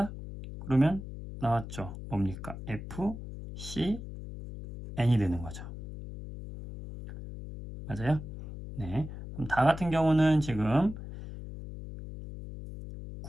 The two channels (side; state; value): left; noise; hum, 10 dB below the sound